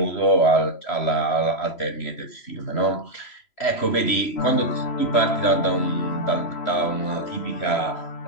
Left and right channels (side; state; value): right; late; 3.0 ms